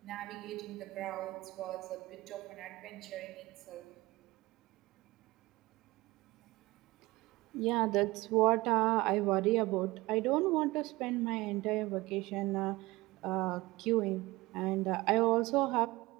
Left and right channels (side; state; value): left; quieter; 20.5 dB